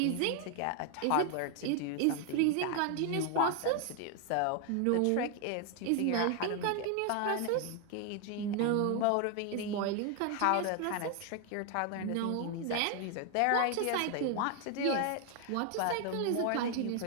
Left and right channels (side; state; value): both; different; correlation 0.00